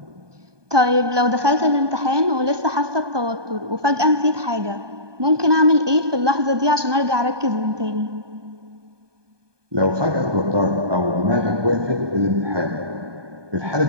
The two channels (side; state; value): left; late; 1.2 ms